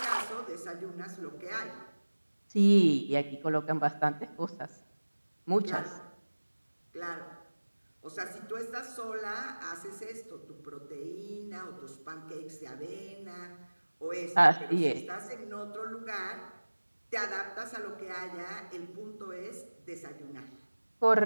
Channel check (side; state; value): both; inverted; correlation -1.00